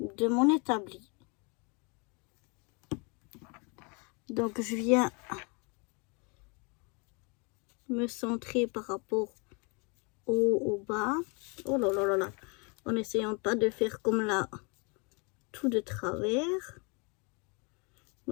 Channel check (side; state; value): right; quieter; 32.1 dB